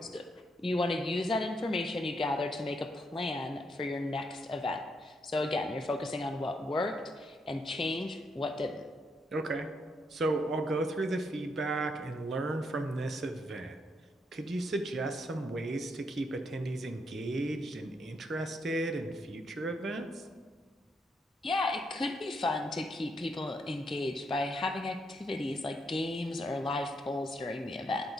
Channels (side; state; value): both; normal; correlation 0.77